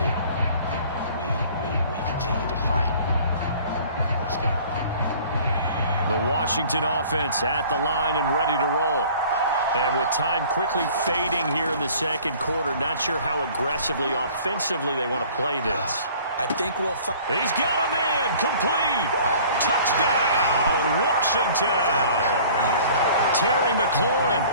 We continue to fight. Let's go. The Washington offense at the line and ready to roll. And with time quickly fading here in the second quarter, not sure how aggressively, offensively they want to play this. I think we'll He's got a man complete. Touchdown, Washington. Terry McLaurin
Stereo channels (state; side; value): inverted; both; correlation -0.50